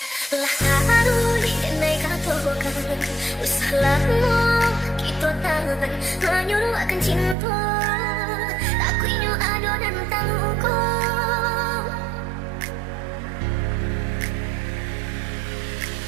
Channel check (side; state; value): left; drops out; at 7.4 s